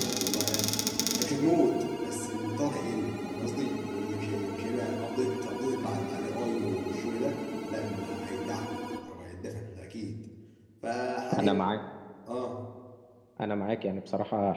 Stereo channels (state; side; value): identical; both; correlation 1.00